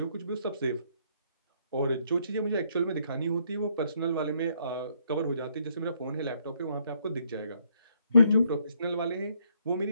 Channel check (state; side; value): inverted; both; correlation -0.70